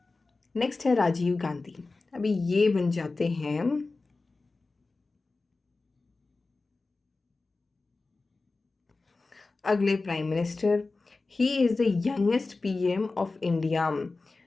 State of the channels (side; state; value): right; quieter; 3.6 dB